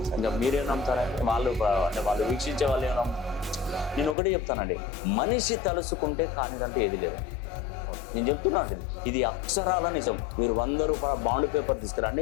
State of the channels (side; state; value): right; drops out; at 4.2 s